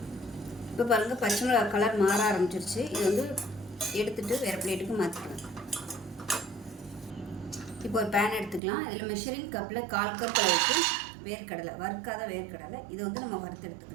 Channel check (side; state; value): left; drops out; at 8.6 s